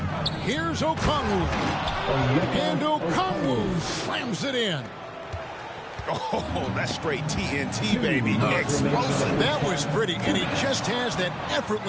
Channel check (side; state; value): both; identical; correlation 1.00